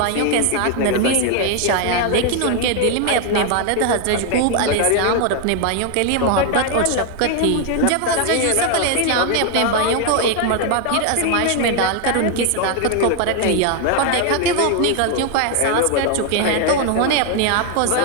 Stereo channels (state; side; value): different; both; correlation 0.00